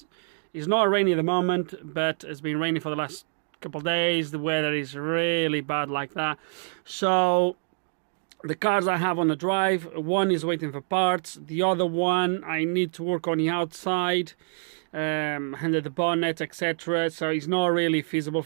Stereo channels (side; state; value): left; silent; digital silence